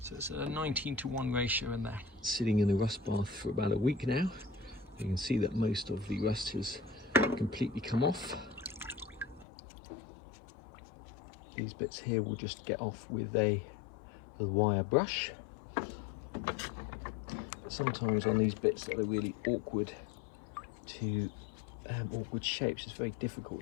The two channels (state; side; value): drops out; right; at 9.5 s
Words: So it's a 19:1 ratio in there. Sitting in the rust bath for about a week now. You can see that most of the rust has completely come off. These bits here will just get off with a wire brush. Sometimes on these bits that are really awkward awkward shapes, it's very